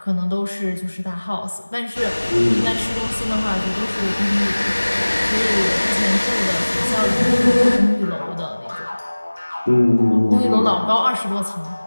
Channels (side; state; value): both; inverted; correlation -1.00